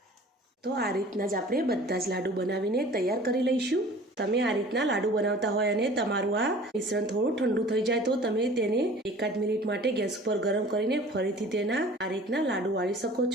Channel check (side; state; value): both; normal; correlation 0.46